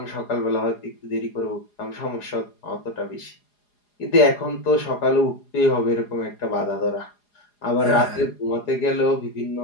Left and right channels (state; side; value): late; right; 4.8 ms